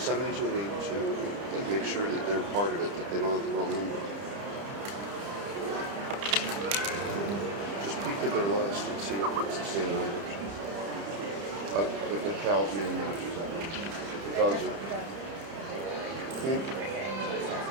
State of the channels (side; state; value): left; late; 30 ms